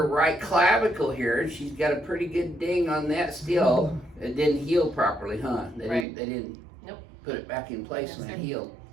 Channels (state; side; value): drops out; left; at 6.1 s